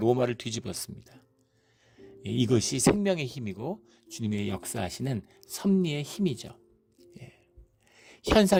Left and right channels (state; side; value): identical; both; correlation 1.00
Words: 뒤집었습니다. 이것이 생명의 힘이고 주님의 역사하시는 섭리의 힘이죠.